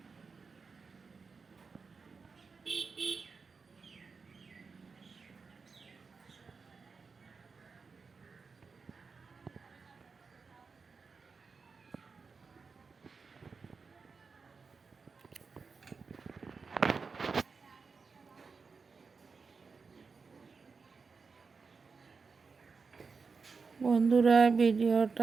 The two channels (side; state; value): left; quieter; 4.9 dB